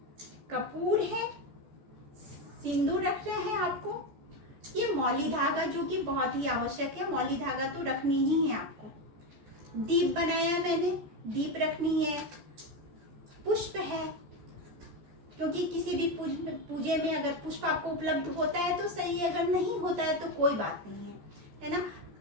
कपूर है, सिंदूर रखना है आपको। ये मौली धागा जो कि बहुत ही आवश्यक है, मौली धागा तो रखनी ही है आपको। दीप बनाया मैंने, दीप रखनी है। पुष्प है, क्योंकि किसी भी पूजे में अगर पुष्प आपको उपलब्ध होता है तो सही है, अगर नहीं होता है तो कोई बात नहीं है ना।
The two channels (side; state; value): left; late; 14 ms